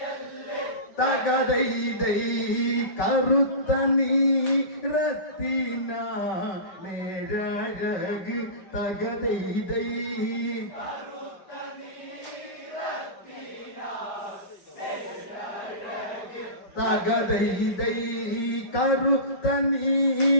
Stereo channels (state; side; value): late; right; 4.9 ms